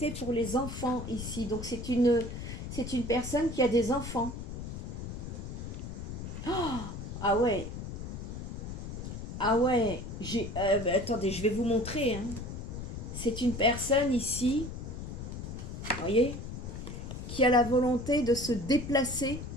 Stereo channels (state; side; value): noise; left; rumble, 7 dB below the sound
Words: pour les enfants ici. Donc c'est une personne qui a des enfants. Oh, ah ouais. Ah ouais, attendez, je vais vous montrer. C'est une personne ici, vous voyez, qui a la volonté de se déplacer